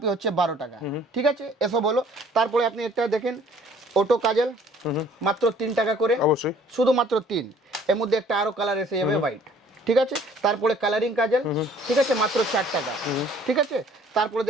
হচ্ছে 12 টাকা, ঠিক আছে? এসব বলো। তারপরে আপনি একটা দেখেন অটো কাজল, মাত্র 3 টাকা করে, অবশ্যই। শুধুমাত্র 3। এর মধ্যে একটা আরো কালার এসে যাবে হোয়াইট, ঠিক আছে? তারপরে কালারিং কাজল, ঠিক আছে, মাত্র 4 টাকা, ঠিক আছে? তারপরে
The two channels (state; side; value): normal; both; correlation 0.56